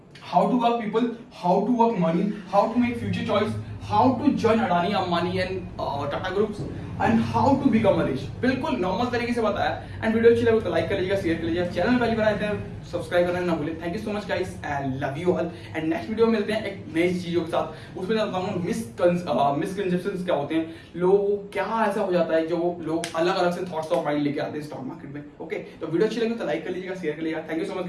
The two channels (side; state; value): both; identical; correlation 1.00